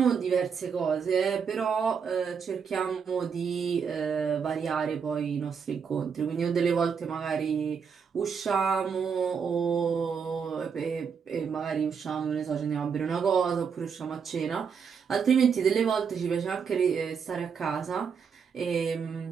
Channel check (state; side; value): quieter; left; 6.4 dB